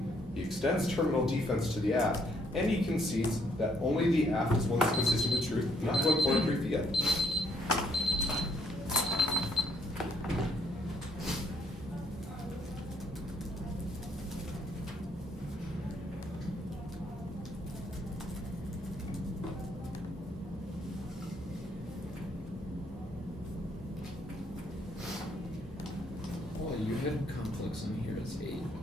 He extends terminal defense to the aft, and he concedes that only the aft is one that's consistent with truth, not going for a brief yet. Well, you had complex on here as 8.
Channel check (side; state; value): both; normal; correlation 0.69